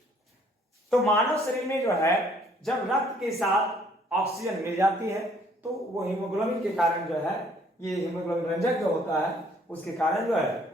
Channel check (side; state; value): both; normal; correlation 0.62